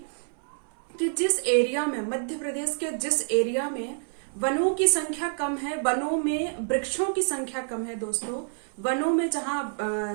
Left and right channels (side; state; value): left; silent; 58 dB below the other